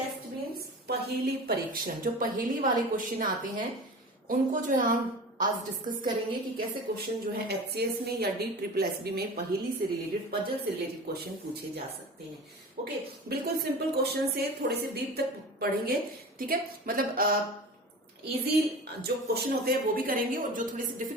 मीन्स पहेली परीक्षण। जो पहेली वाले क्वेश्चन आते हैं उनको जो है हम आज डिस्कस करेंगे कि कैसे क्वेश्चन जो है एचसीएस में या DSSB में पहेली से रिलेटेड, पजल से रिलेटेड क्वेश्चन पूछे जा सकते हैं। ओके, बिल्कुल सिंपल क्वेश्चन से थोड़े से डीप तक पढ़ेंगे। ठीक है, मतलब इजी जो क्वेश्चन होते हैं वो भी करेंगे और जो थोड़े से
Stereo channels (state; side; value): normal; both; correlation 0.35